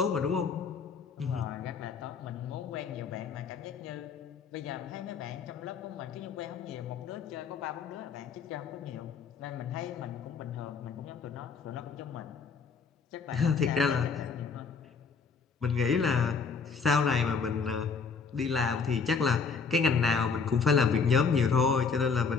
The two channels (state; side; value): quieter; right; 5.4 dB